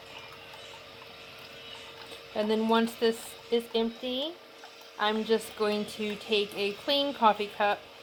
And then once this is empty, I'm just going to take a clean coffee cup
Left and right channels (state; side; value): identical; both; correlation 1.00